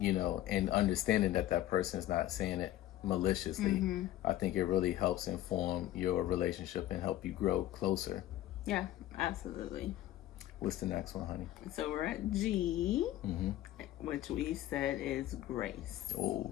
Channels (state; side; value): quieter; right; 13.9 dB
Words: understanding that person is not saying it maliciously, I think it really helps inform your relationship and help you grow closer. Yeah, absolutely. What's the next one, honey? So we're at G. which we said is grace. Oh,